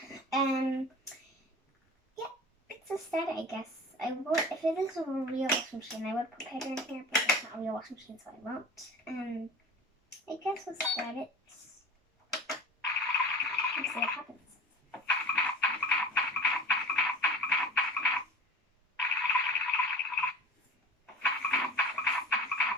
yeah, it's a start, I guess. If it is a real washing machine, I would put powder in here, but it's not a real washing machine, so I won't. I guess we'll start it. Let's see what happens.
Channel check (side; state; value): both; normal; correlation 0.38